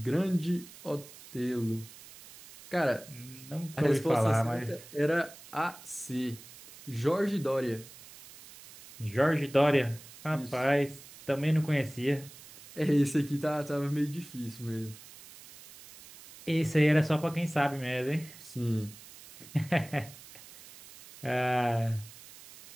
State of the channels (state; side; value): noise; right; hiss, 19 dB below the sound